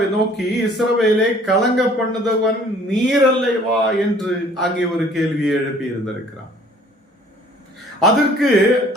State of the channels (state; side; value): normal; both; correlation 0.55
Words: நோக்கி இஸ்ரவேலை கலங்க பண்ணுதவன் நீர் அல்லவா என்று அங்கே ஒரு கேள்வியை எழுப்பி இருந்திருக்கிறான். அதற்கு